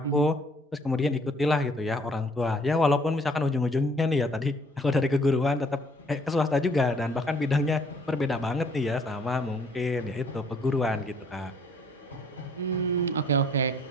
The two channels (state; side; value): normal; both; correlation 0.60